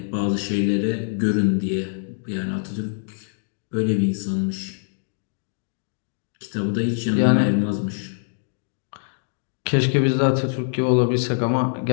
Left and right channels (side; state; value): right; silent; digital silence